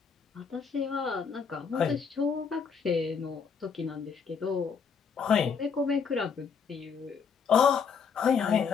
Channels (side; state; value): right; quieter; 6.2 dB